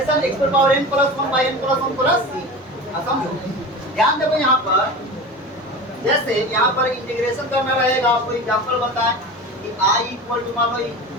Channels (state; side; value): normal; both; correlation 0.31